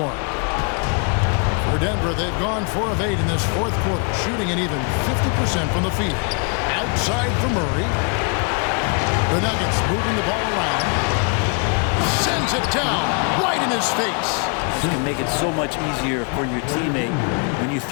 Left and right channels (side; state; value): right; quieter; 37.4 dB